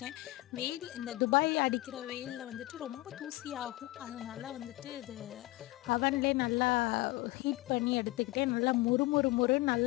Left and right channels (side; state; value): right; quieter; 19.8 dB